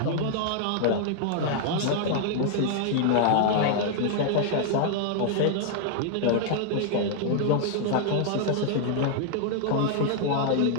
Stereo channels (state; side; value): different; both; correlation 0.00